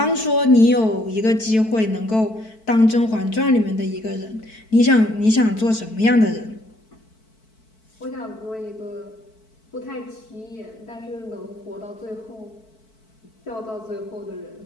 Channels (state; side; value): late; right; 4.5 ms